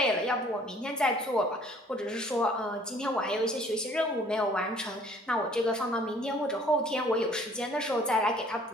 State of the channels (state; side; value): normal; both; correlation 0.56